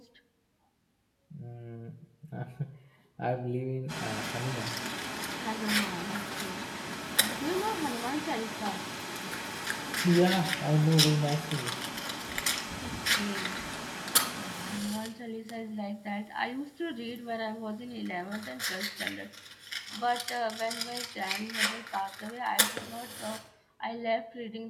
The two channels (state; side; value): identical; both; correlation 1.00